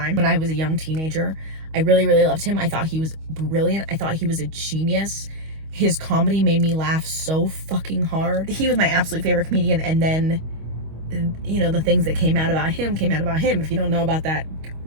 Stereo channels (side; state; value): left; late; 25 ms